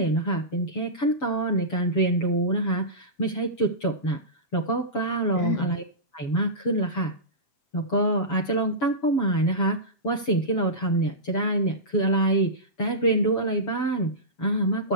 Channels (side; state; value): right; late; 7.1 ms